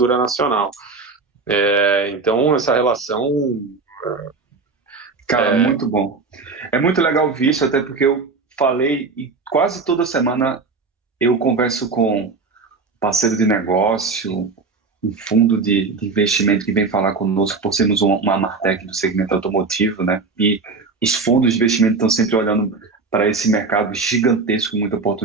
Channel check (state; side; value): quieter; left; 4.3 dB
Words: nacional. Então, essa relação... Cara, muito bom. É muito legal ver isso, até porque eu falei, e quase toda semana eu converso com parceiro de negócio, um fundo de investimento que vem falar conosco por sermos uma Martech do segmento automotivo, né? E os fundos de investimento estão sempre olhando para esse mercado gigantesco, com muita